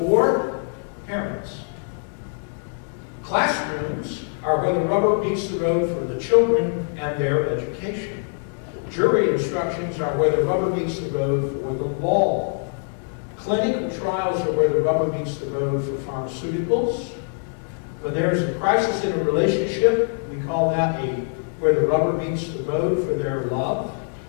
parents. Classrooms are where the rubber meets the road for the children and their education. Jury instructions are where the rubber meets the road for the law. Clinical trials are where the rubber meets the road for pharmaceuticals. When there is a crisis in a relationship, we call that where the rubber meets the road for their love.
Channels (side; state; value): right; silent; 63 dB below the other